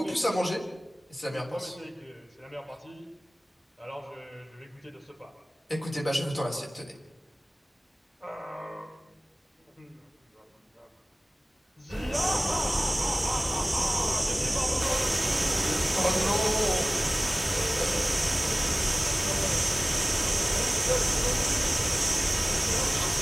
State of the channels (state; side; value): normal; both; correlation 0.97